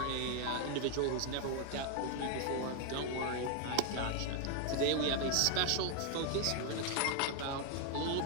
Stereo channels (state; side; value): different; both; correlation 0.01